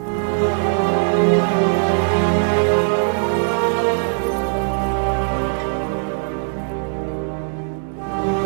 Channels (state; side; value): silent; left; 66 dB below the other